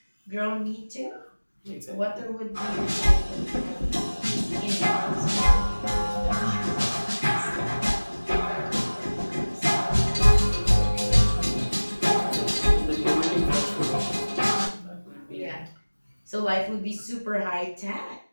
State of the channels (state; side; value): inverted; both; correlation -1.00